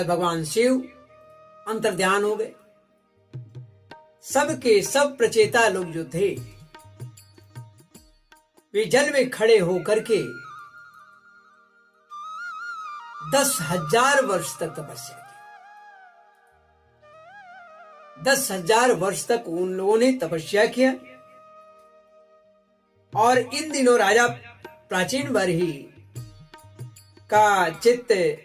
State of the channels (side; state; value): both; identical; correlation 1.00